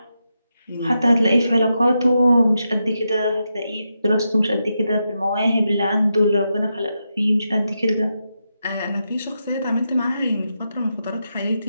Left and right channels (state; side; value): inverted; both; correlation -0.86